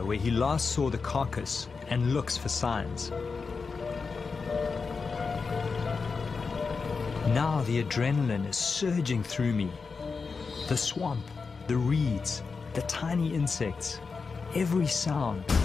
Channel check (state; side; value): quieter; right; 4.8 dB